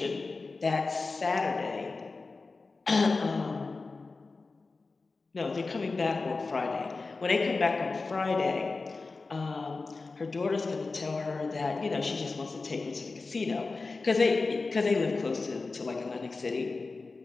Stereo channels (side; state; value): right; quieter; 3.9 dB